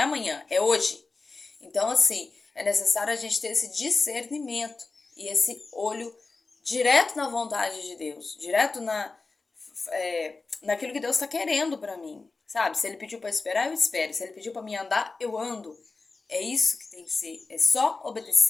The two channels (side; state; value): right; quieter; 3.9 dB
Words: amanhã, é hoje. Então, assim, é necessário a gente ter esse discernimento e esse olho direto na vontade de Deus, direto naquilo que Deus está querendo para mim, sabe? Se Ele pediu para esperar, eu espero. Se Ele pediu para me andar, eu ando. É isso que tem que ser, é só